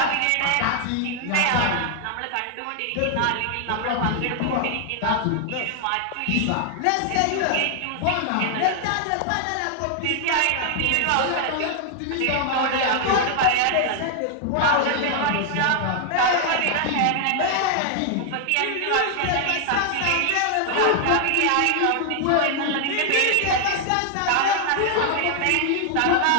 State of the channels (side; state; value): both; different; correlation 0.00